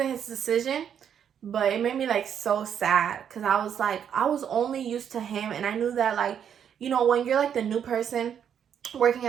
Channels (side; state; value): left; quieter; 8.5 dB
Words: his decision. But it made me like so sad, because I was like, I was only used to him, and I knew that like, you know, when you're like the new person working